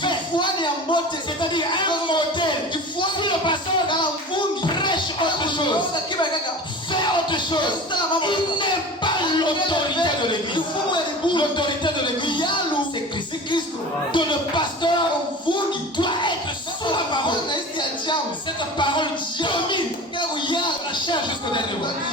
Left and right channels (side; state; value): both; normal; correlation 0.35